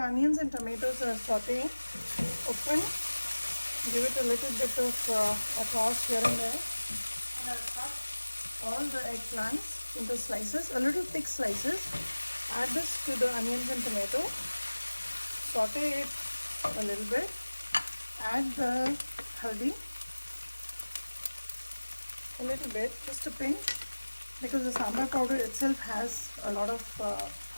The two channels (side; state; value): both; inverted; correlation -1.00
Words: onions and tomatoes are sauteing, open, give it a little bit of a toss here and there, and I'll cut all the eggplants into slices, a little thick slices. Add this to the onions and tomato, saute it a little bit, add the haldi, a little bit, just a pinch, because the sambar powder itself has a lot of